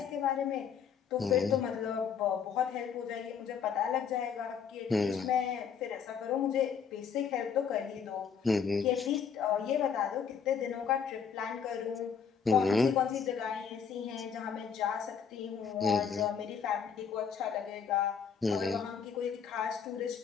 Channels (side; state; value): right; quieter; 6.8 dB